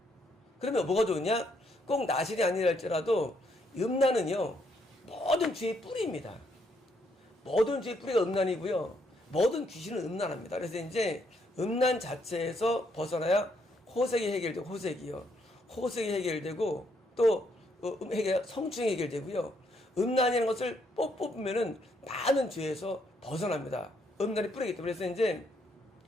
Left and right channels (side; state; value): both; normal; correlation 0.73